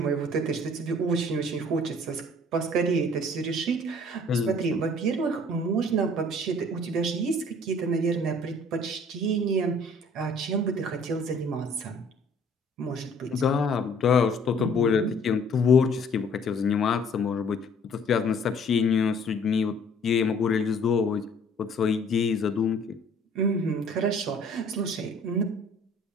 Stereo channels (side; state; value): both; normal; correlation 0.55